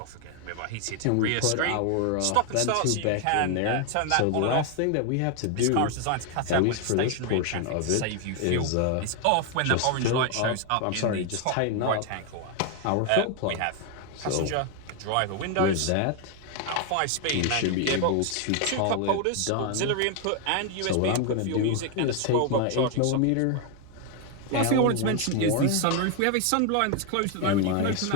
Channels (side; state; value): both; different; correlation 0.01